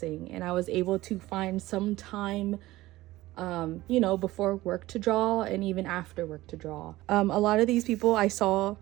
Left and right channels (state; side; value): quieter; left; 17.5 dB